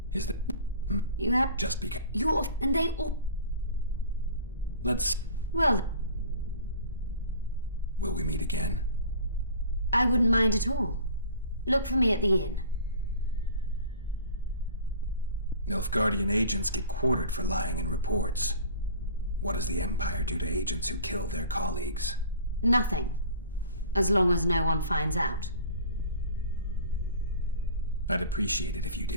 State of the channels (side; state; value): both; inverted; correlation -0.44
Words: Is that... You have... Just because... You're... and they all... Let's... Well... Will we meet again? I wouldn't mind at all. Look for me at the inn. Nilfgaardian agents get quartered for lying in reports. What does the Empire do to agents who kill their colleagues? Nothing. As long as no one finds out. I'd appreciate it if you